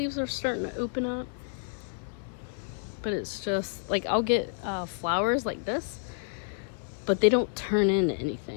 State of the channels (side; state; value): right; silent; 58 dB below the other